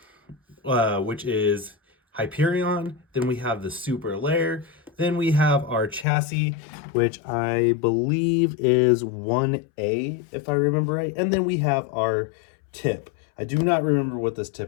which is Hyperion. Then we have the super layer. Then we have our chassis, which I believe is 1A, if I remember right. And then we have our tip. I do not remember what this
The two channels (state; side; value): drops out; right; at 6.1 s